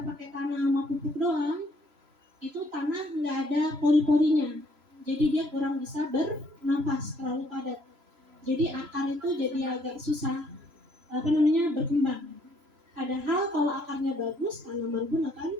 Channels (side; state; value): left; late; 3.0 ms